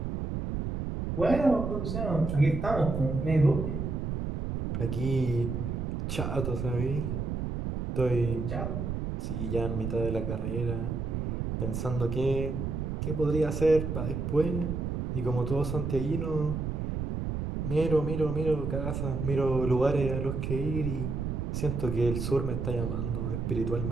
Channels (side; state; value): right; noise; rumble, 3 dB below the sound